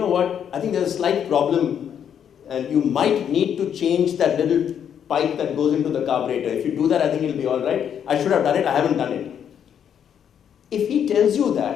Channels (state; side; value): quieter; right; 8.6 dB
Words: what, I think there's a slight problem, and you might need to change that little pipe that goes into the carburetor. If you do that, I think it'll be all right. I should have done it, I haven't done it. If he tells you